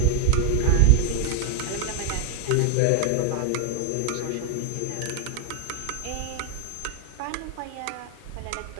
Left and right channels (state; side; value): different; both; correlation 0.00